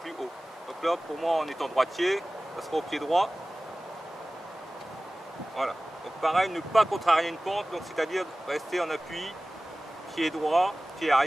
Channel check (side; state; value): both; normal; correlation 0.97